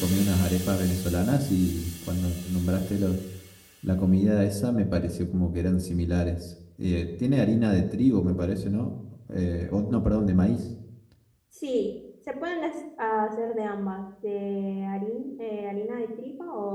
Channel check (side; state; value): both; identical; correlation 1.00